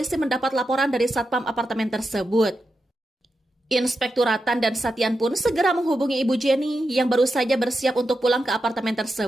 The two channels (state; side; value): normal; both; correlation 0.88